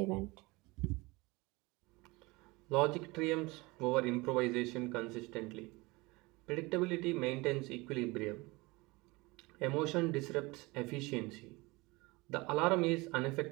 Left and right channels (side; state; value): left; quieter; 23.7 dB